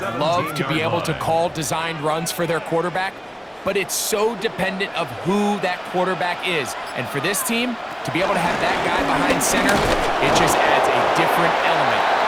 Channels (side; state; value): both; identical; correlation 1.00